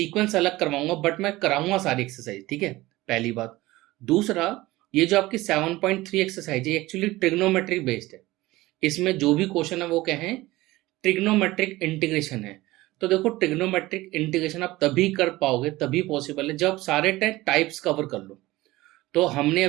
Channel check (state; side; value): quieter; left; 18.8 dB